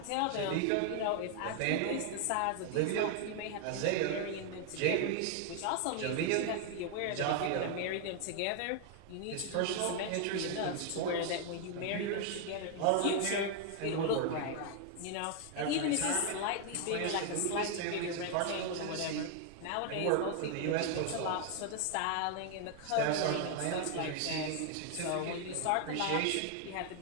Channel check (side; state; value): both; different; correlation 0.00